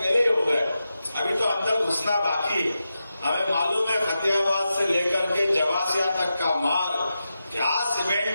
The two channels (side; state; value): both; inverted; correlation -0.90